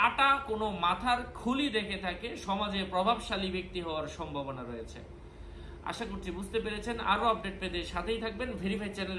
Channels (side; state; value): both; identical; correlation 1.00